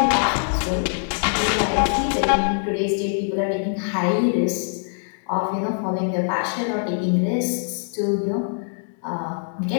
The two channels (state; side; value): silent; right; digital silence